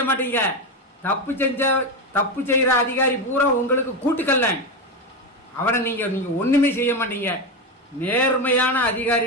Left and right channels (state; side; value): normal; both; correlation 0.14